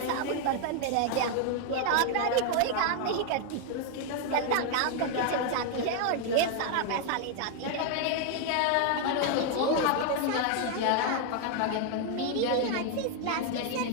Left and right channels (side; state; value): both; different; correlation 0.01